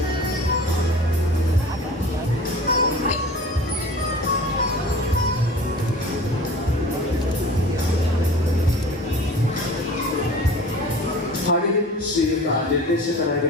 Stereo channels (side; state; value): both; normal; correlation 0.42